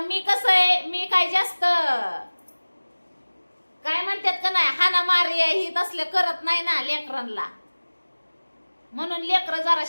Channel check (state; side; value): inverted; both; correlation -1.00